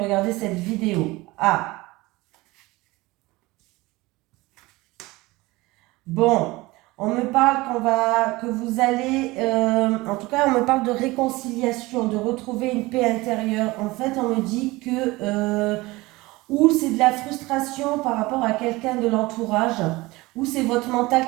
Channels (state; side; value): quieter; left; 21.1 dB